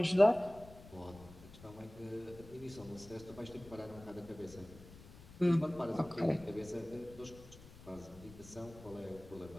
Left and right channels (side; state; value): left; noise; rumble, 18 dB below the sound